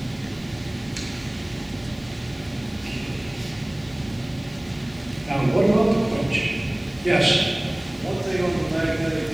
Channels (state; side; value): noise; left; hiss, 30 dB below the sound